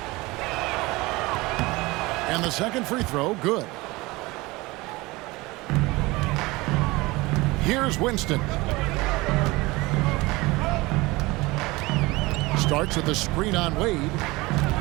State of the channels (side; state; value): left; quieter; 22.0 dB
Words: And the second free throw, good. Here's Winston. Starts with a screen on Wade